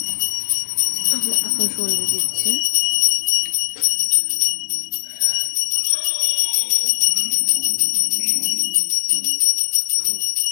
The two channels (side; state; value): right; silent; 63 dB below the other